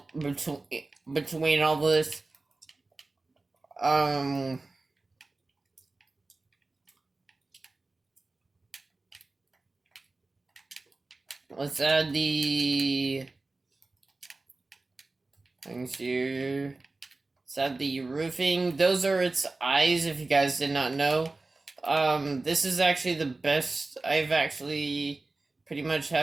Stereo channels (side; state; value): left; quieter; 3.3 dB